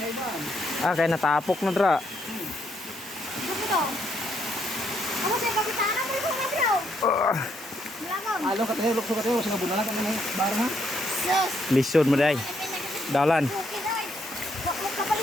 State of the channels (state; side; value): normal; both; correlation 0.74